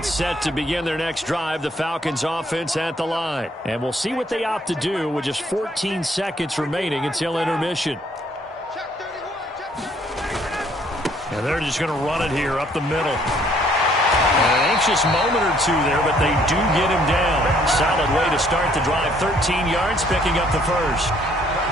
set to begin their next drive, the Falcons offense at the line. And we'll see what they opt to do with just 14 seconds remaining until intermission. And they're just going to run it here up the middle. And an anxious moment or two there, but they do get him down. Solid way to start the drive. 13 yards, picking up the first.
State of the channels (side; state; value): both; normal; correlation 0.64